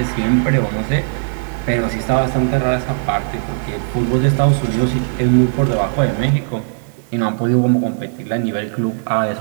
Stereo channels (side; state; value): left; silent; 61 dB below the other